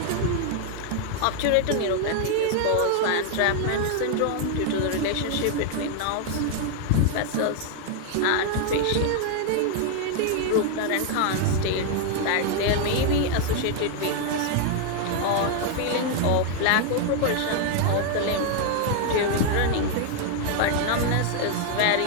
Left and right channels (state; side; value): different; both; correlation 0.00